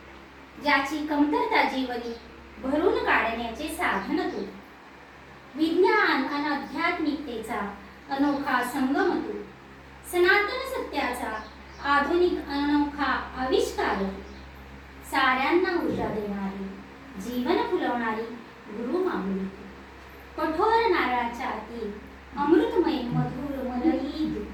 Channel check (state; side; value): identical; both; correlation 1.00